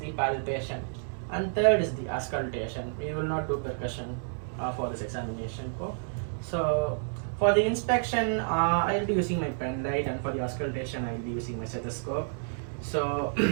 palpation, and third is the auscultation. We will not do percussion for this examination. So for the inspection, I will be using my pen light, and for the auscultation, I will be using my stethoscope. So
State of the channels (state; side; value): silent; left; digital silence